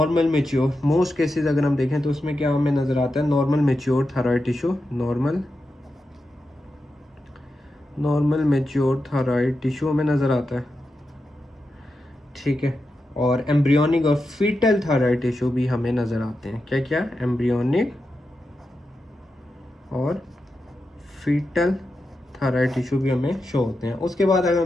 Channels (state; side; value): normal; both; correlation 0.89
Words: मेच्योर, मोस्ट केसेस अगर हम देखें तो उसमें क्या हमें नज़र आता है, normal mature thyroid tissue, normal mature thyroid tissue हमें नज़र आता है, ठीक है। और एम्ब्रियोनिक और फीटल थायराइड टिश्यू भी हमें नज़र आते हैं। क्या क्या, एम्ब्रियोनिक और फीटल थायराइड टिश्यू भी हमें शो होते हैं। उसके बाद अगर